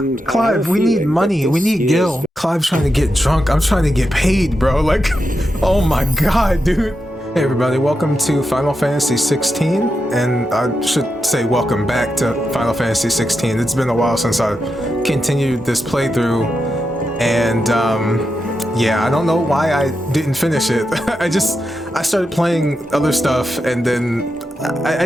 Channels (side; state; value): both; normal; correlation 0.87